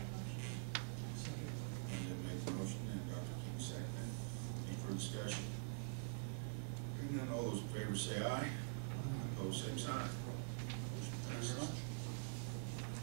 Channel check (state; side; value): silent; left; digital silence